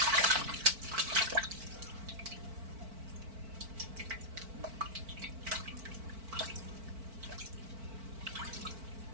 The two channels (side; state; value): left; late; 4.5 ms